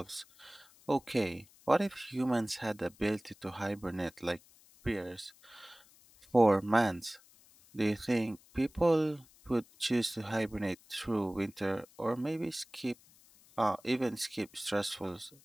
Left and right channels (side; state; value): left; noise; hiss, 27 dB below the sound